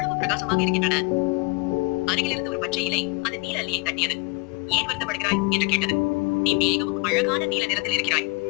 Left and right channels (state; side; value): quieter; right; 28.1 dB